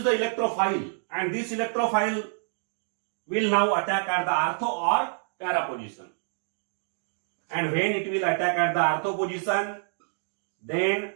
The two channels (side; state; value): left; silent; digital silence